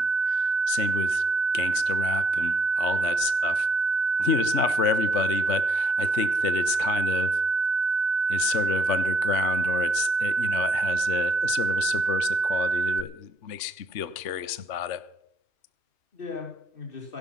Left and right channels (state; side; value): late; right; 3.3 ms